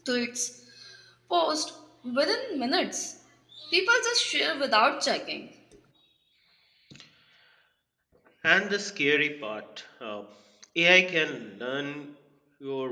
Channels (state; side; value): identical; both; correlation 1.00